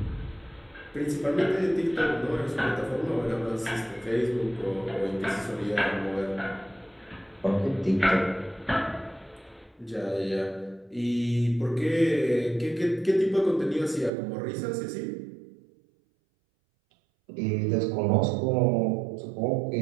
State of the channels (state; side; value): drops out; left; at 14.1 s